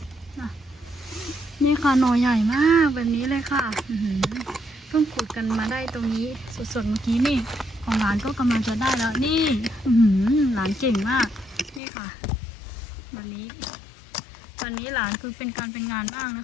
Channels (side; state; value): right; drops out; at 11.8 s